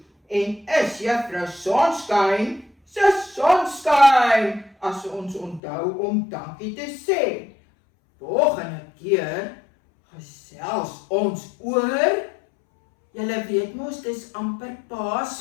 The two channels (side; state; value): right; drops out; at 5.6 s